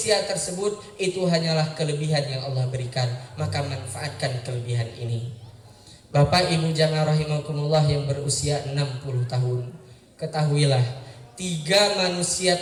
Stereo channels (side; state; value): both; identical; correlation 1.00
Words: tersebut, itu hanyalah kelebihan yang Allah berikan, maka manfaatkan kelebihan ini. Bapak Ibu jamaah rahimakumullah yang berusia 60 tahun, ketahuilah 3 manusia